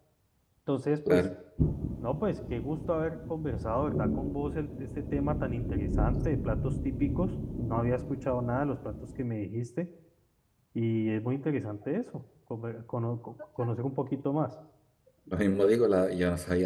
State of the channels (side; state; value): both; identical; correlation 1.00